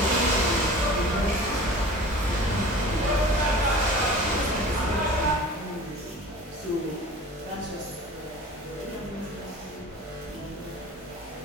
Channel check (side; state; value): both; normal; correlation 0.40